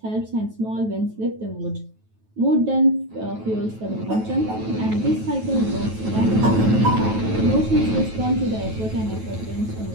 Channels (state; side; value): late; left; 9.2 ms